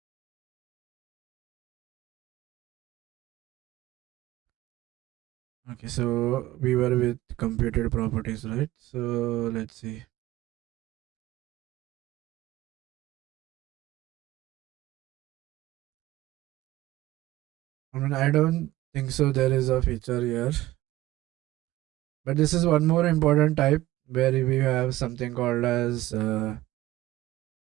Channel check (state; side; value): quieter; left; 16.2 dB